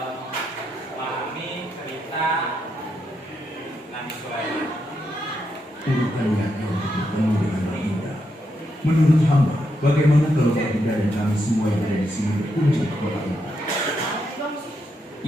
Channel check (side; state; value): both; normal; correlation 0.81